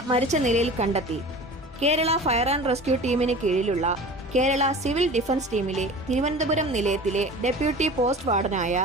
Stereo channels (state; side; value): normal; both; correlation 0.38